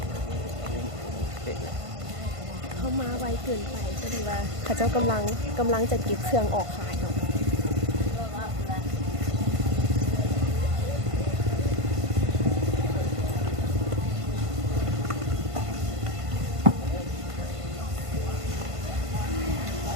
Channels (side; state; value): left; late; 1.5 ms